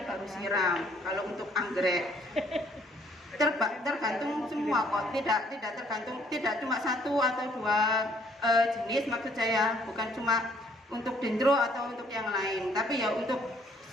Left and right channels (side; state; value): both; normal; correlation 0.63